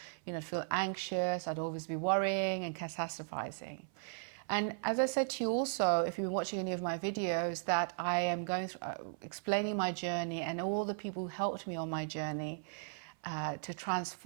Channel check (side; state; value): left; silent; 53 dB below the other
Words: feel anxious. I'd always be worrying and catastrophizing. And as I said to you also, if you've been watching any of my videos, that I am going through explaining my journey and all the people who helped me on my journey to